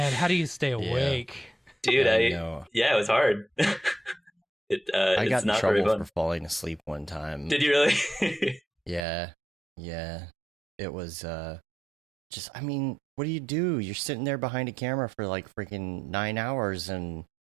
how do you stay awake? Dude, it was hard. I got in trouble for falling asleep one time. Did you really? Yeah. It was what do you do? You're sitting there behind a camera for like freaking 9 hours, and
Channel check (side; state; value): left; drops out; at 9.1 s